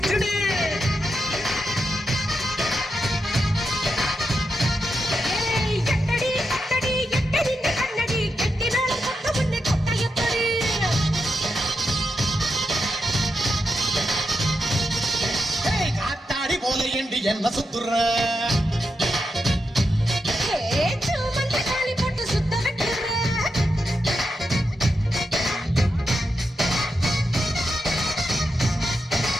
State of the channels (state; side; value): normal; both; correlation 0.86